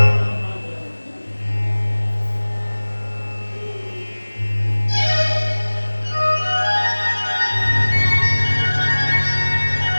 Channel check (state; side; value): inverted; both; correlation -1.00